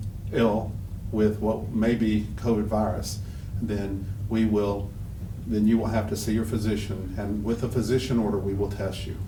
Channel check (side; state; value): both; identical; correlation 1.00